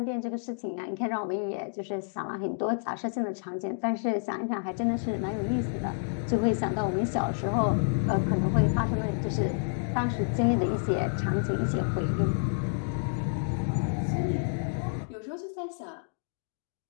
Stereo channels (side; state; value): right; silent; digital silence